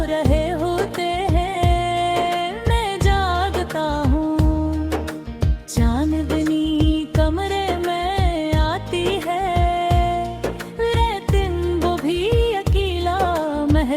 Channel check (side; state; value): both; identical; correlation 1.00